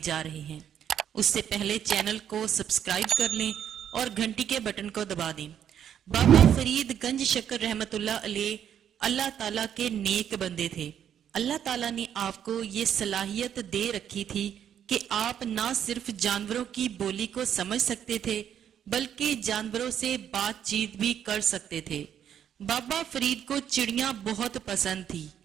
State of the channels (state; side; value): quieter; left; 9.3 dB